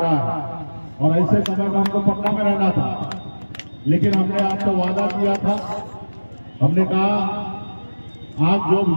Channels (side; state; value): both; inverted; correlation -1.00